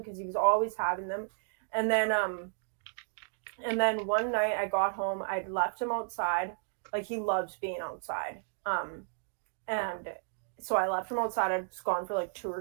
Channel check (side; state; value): left; silent; digital silence